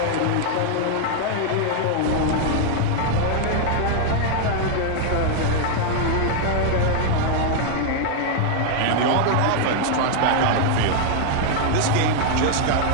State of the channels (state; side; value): different; both; correlation 0.00